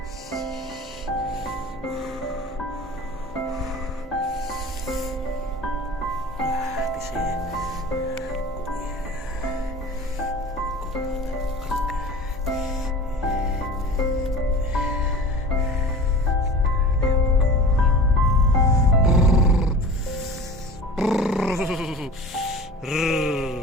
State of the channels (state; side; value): normal; both; correlation 0.38